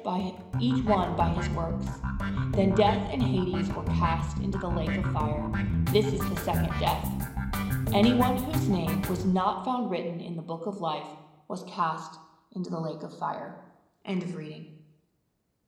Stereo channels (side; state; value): both; identical; correlation 1.00